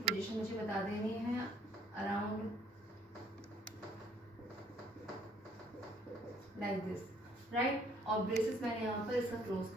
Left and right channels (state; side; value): normal; both; correlation 0.62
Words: मुझे बता देनी है अराउंड लाइक दिस. राइट. और ब्रेसेस मैंने यहाँ पर इसका क्लोज